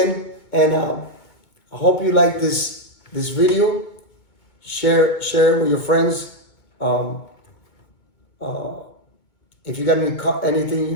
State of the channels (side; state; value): right; late; 2.2 ms